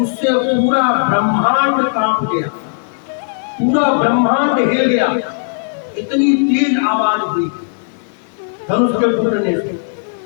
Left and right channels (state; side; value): silent; right; 61 dB below the other